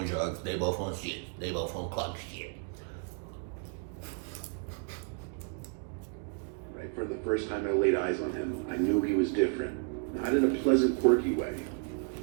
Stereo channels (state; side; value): quieter; left; 36.7 dB